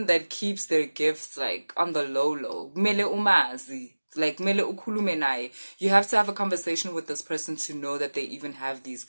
that keeps their gifts like on the low. Kumele umazi, like kumele ukhulume naye. You have to have a conversation with this person to know that they even have these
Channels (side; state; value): both; inverted; correlation -1.00